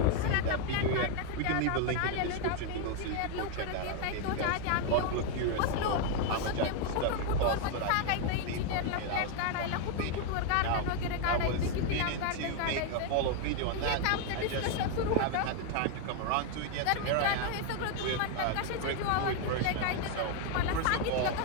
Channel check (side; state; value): both; different; correlation 0.01